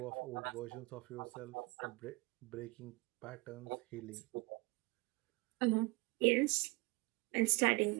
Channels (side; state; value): left; quieter; 24.9 dB